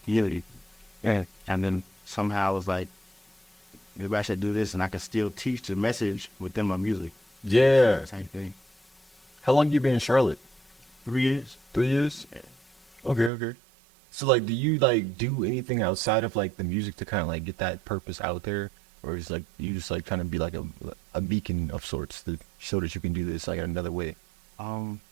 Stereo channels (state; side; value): drops out; left; at 13.3 s